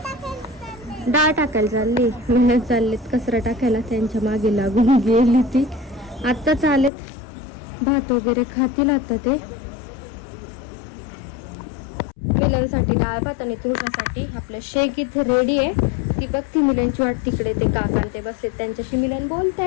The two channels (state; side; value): drops out; right; at 6.9 s